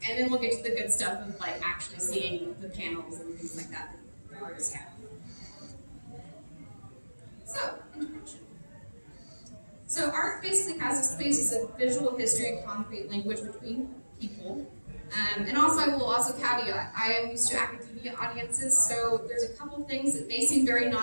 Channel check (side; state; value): both; inverted; correlation -1.00